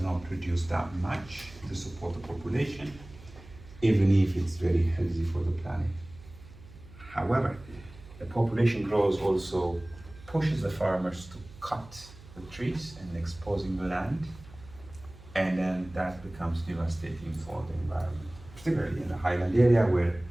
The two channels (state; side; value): noise; right; hum, 20 dB below the sound